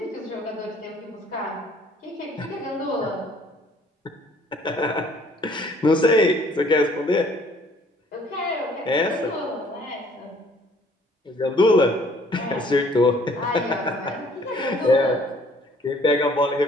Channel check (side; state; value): both; normal; correlation 0.59